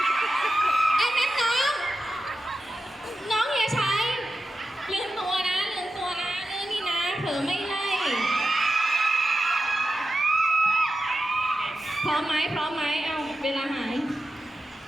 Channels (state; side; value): normal; both; correlation 0.92